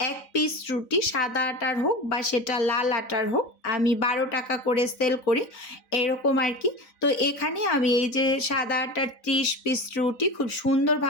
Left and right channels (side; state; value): right; late; 4.0 ms